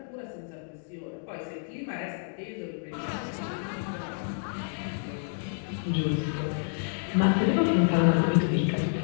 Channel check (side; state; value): right; silent; digital silence